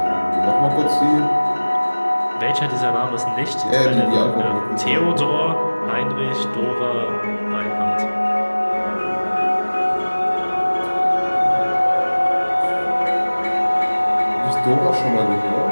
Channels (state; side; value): inverted; both; correlation -1.00